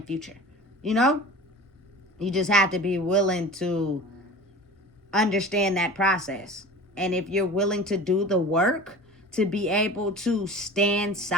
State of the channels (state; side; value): normal; both; correlation 0.38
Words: future. You just have to be willing to understand that process. And if you're willing to do the work to be able to stand